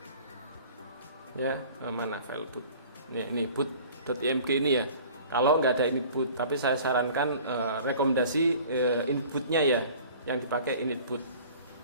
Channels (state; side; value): inverted; both; correlation -0.46